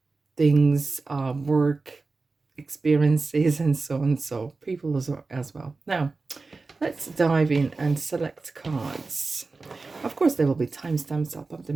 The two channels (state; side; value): quieter; left; 3.8 dB